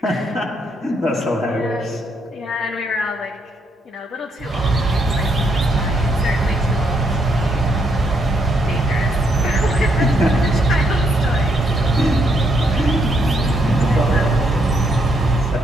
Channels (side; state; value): both; normal; correlation 0.74